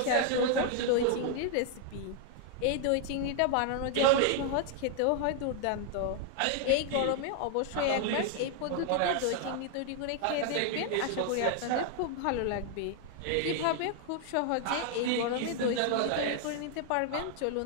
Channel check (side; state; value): both; different; correlation 0.00